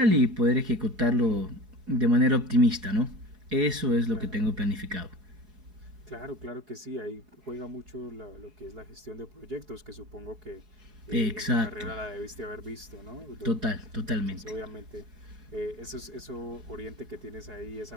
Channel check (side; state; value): left; late; 4.8 ms